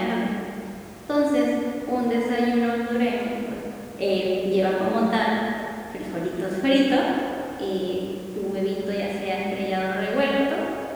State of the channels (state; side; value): identical; both; correlation 1.00